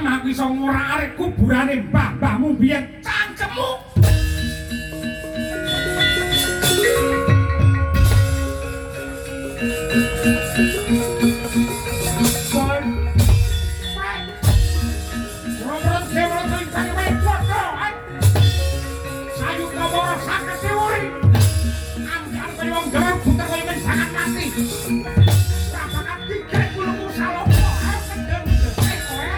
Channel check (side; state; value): both; identical; correlation 1.00